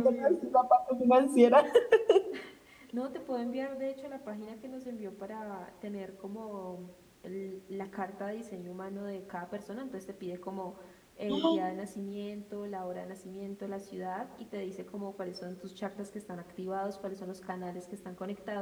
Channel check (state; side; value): identical; both; correlation 1.00